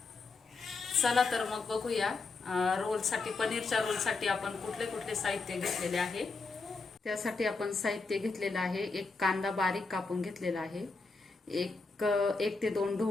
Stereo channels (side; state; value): right; quieter; 4.0 dB